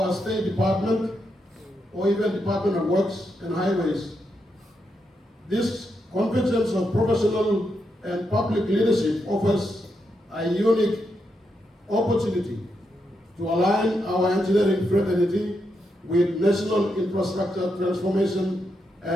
a state department or even Department of Works and Highways. This convergence of professional and public leadership offers a unique opportunity to align our engineering fraternity with national infrastructure transformation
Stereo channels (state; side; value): normal; both; correlation 0.83